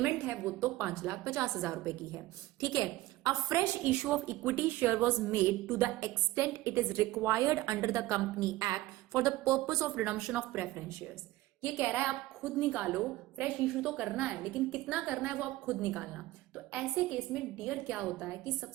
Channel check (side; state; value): left; quieter; 17.3 dB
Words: है वो तो 5,50,000 रुपए की है, ठीक है। A fresh issue of equity share was made to the extent it is required under the company act for the purpose of redemption of preference shares. ये कह रहा है आप खुद निकालो, फ्रेश इशू तो करना है लेकिन कितना करना है वो आप खुद निकालना। तो ऐसे केस में डियर क्या होता है कि